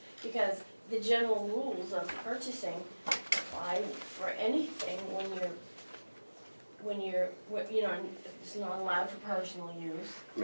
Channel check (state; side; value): inverted; both; correlation -1.00